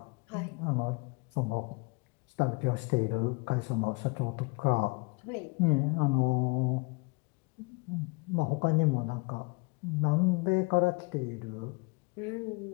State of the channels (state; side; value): quieter; right; 28.5 dB